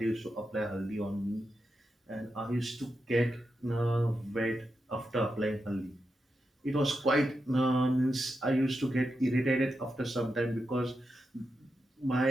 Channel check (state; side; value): normal; both; correlation 0.88